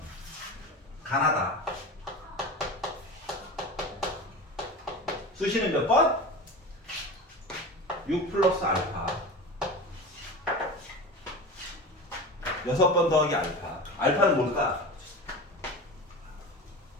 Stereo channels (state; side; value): normal; both; correlation 0.30